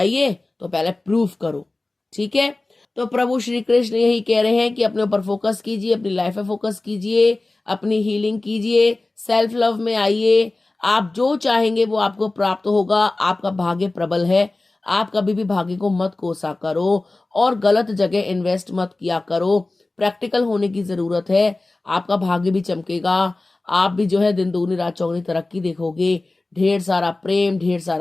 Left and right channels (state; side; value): quieter; right; 3.1 dB